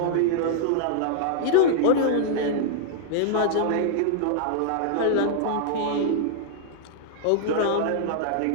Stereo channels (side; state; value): both; different; correlation -0.01